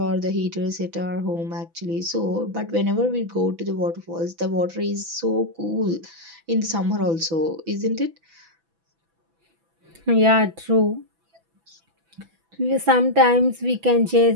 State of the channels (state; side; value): late; left; 6.0 ms